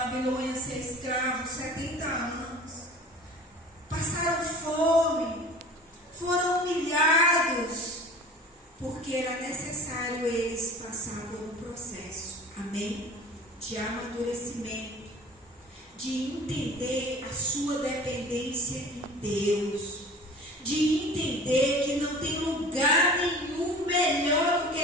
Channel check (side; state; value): both; normal; correlation 0.42